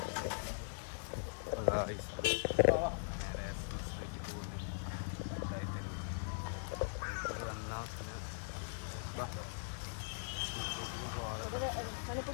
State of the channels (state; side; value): silent; right; digital silence